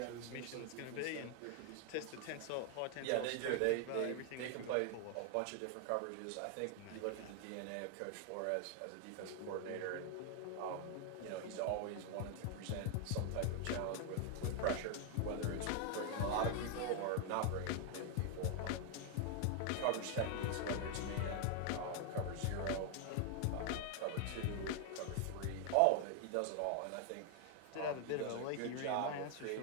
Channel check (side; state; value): both; different; correlation 0.00